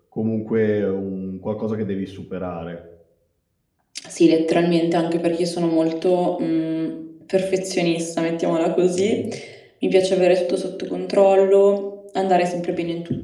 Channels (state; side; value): identical; both; correlation 1.00